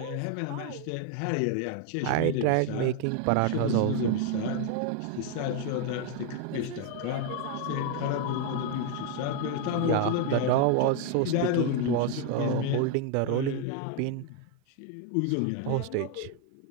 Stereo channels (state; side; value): different; both; correlation 0.01